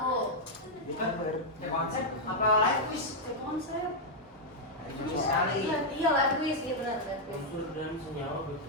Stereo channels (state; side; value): normal; both; correlation -0.03